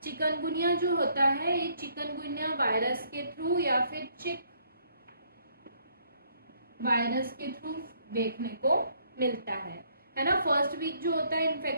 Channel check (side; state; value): both; inverted; correlation -0.67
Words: चिकनगुनिया जो होता है ये चिकनगुनिया वायरस के थ्रू या फिर चिक वायरस के थ्रू देखने को मिलता है ना। फर्स्ट वीक जो होता है